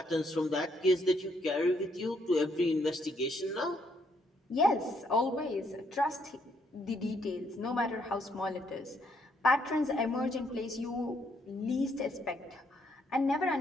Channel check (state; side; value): normal; both; correlation 0.72